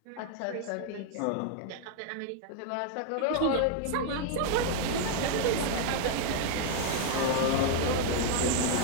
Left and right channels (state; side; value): different; both; correlation 0.00